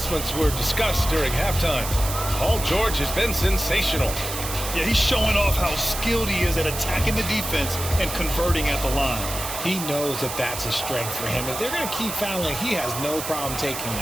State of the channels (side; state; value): right; noise; hiss, 6 dB below the sound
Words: were discussed during halftime. Paul George has been sensational. Yeah, he's showing off how skilled he is at attacking the defense and converting at the line. He knows that that's a strength for him. If they're going to keep fouling, he has no problem taking